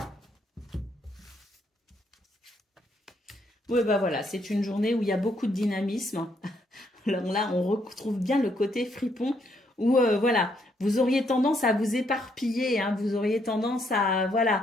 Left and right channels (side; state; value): both; normal; correlation 0.73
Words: Oui, bah voilà, c'est une journée où il y a beaucoup de dynamisme. Alors là, on retrouve bien le côté fripon où, voilà, vous auriez tendance à vous éparpiller, hein, vous auriez tendance à,